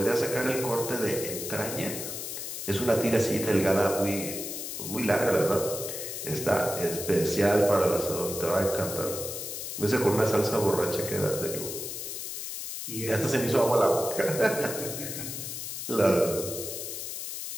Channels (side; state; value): left; noise; hiss, 6 dB below the sound